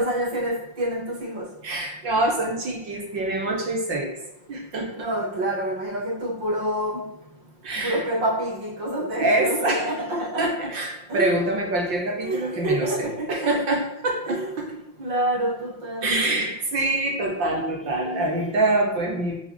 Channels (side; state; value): left; late; 5.7 ms